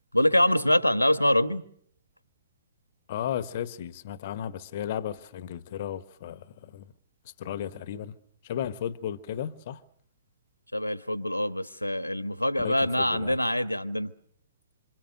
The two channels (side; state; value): both; inverted; correlation -0.92